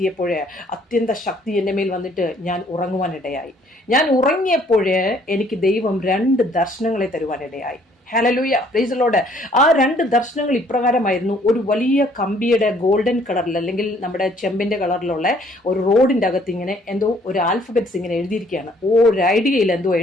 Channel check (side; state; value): both; normal; correlation 0.62